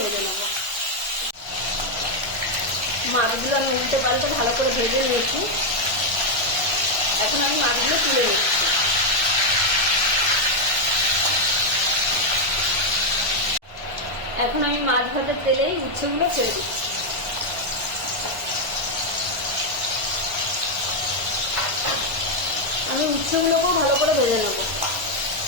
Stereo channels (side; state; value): left; late; 1.1 ms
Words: নেব। মাছগুলো আমি উল্টে পাল্টে ভালো করে ভেজে নিয়েছি। এখন আমি মাছগুলো তুলে নিচ্ছি। এখন আমি মাছ ভাজার তেলে উচ্ছেগুলো ছেড়ে দিচ্ছি। আমি উচ্ছেগুলোকেও ভালো করে ভেজে নেব।